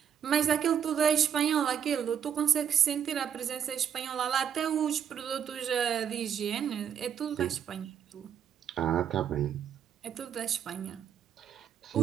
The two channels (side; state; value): left; quieter; 8.4 dB